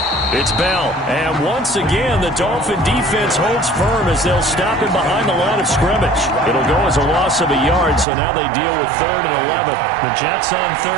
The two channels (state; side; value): drops out; left; at 8.1 s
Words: It's Bell. And once again, the Dolphin defense holds firm as they'll stop him behind the line of scrimmage. It'll go as a loss of a yard, so now they deal with 3rd and 11. The Jets on